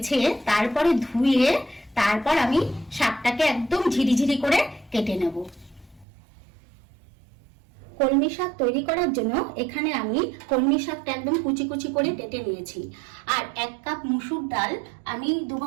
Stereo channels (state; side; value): drops out; left; at 6.1 s